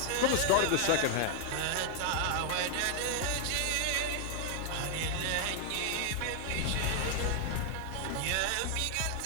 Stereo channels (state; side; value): different; both; correlation 0.00